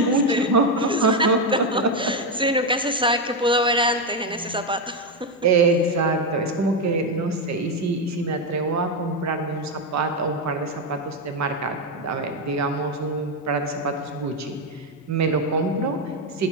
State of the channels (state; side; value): normal; both; correlation 0.07